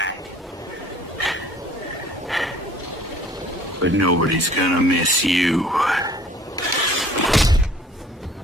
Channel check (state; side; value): normal; both; correlation 0.53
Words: But nobody's gonna miss you.